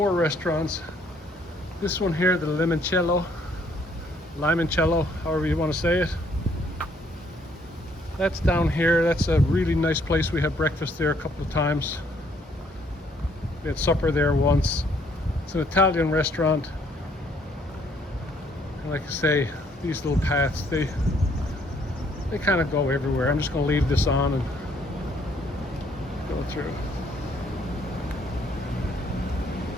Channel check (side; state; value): both; normal; correlation 0.66